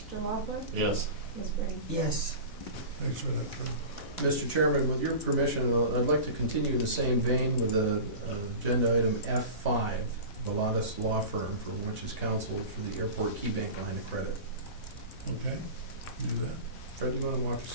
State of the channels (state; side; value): late; right; 4.1 ms